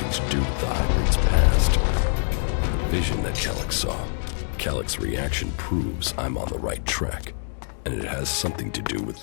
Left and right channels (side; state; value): right; silent; digital silence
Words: to do with the hybrid's past. The vision that Elex saw. Alex's reaction proves I'm on the right track, and it has something to do with